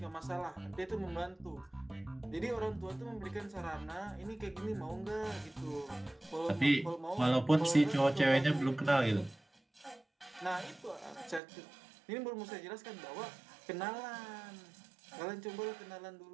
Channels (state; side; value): drops out; left; at 11.4 s